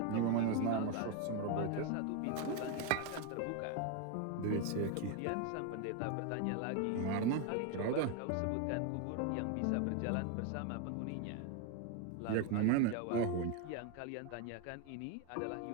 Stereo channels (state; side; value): different; both; correlation 0.01